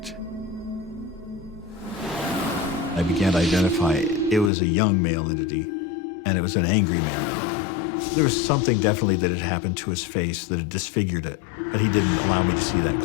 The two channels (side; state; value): right; drops out; at 4.5 s